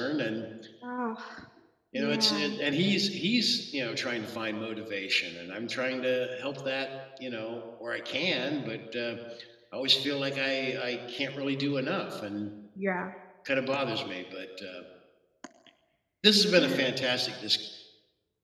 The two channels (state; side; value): identical; both; correlation 1.00